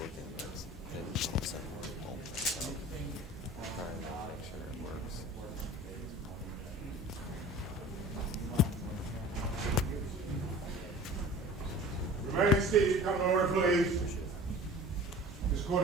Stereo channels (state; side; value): normal; both; correlation 0.41